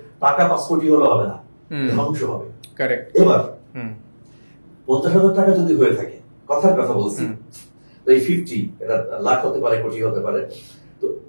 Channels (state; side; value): inverted; both; correlation -1.00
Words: টাকা 5 কোটি হলে হবে না, ধ্বংস হবে। এবার 50,000 টাকা যদি হয়ে থাকে, কথার কথা বলছি, তো এই 50 এটা লাখ হতে পারে, কোটি হতে পারে, তো